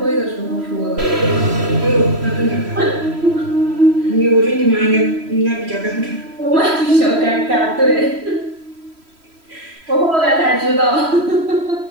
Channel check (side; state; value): left; late; 3.1 ms